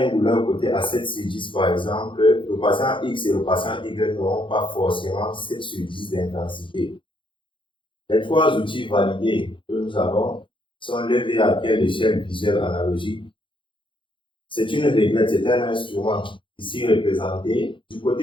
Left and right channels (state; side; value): late; right; 0.24 ms